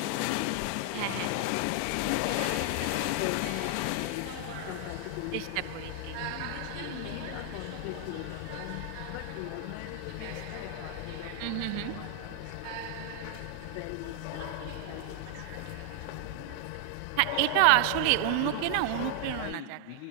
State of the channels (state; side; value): different; both; correlation 0.00